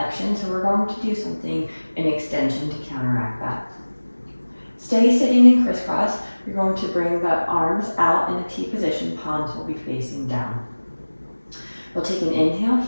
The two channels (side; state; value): both; inverted; correlation -1.00